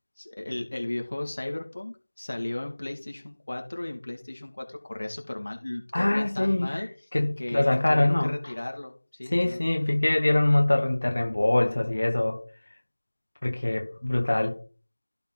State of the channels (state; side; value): inverted; both; correlation -1.00